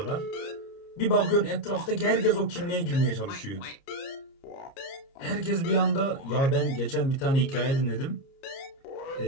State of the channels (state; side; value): late; right; 30 ms